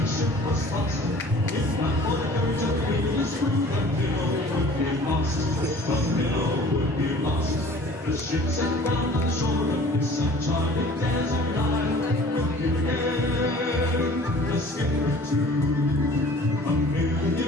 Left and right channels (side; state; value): both; normal; correlation 0.48